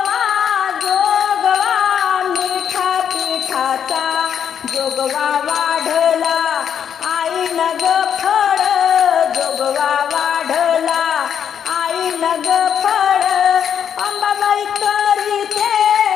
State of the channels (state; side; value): quieter; right; 8.4 dB